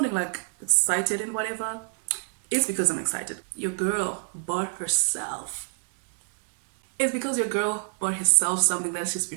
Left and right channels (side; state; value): left; silent; 61 dB below the other